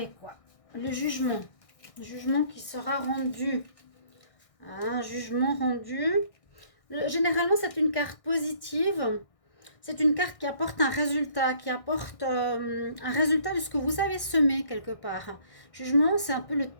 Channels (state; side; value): late; right; 1.6 ms